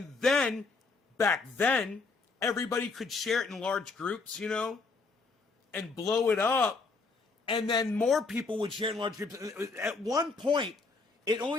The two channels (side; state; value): right; quieter; 4.1 dB